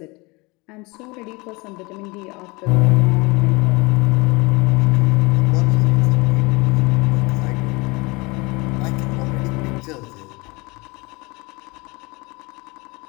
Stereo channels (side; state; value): right; quieter; 25.9 dB